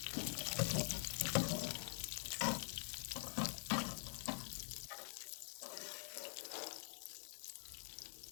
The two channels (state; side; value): silent; right; digital silence